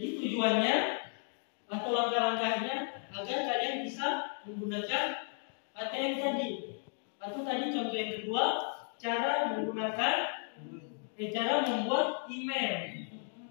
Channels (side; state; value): right; silent; 55 dB below the other